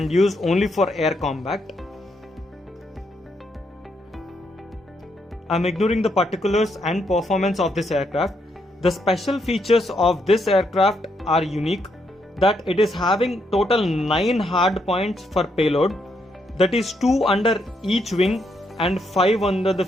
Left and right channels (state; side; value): normal; both; correlation 0.77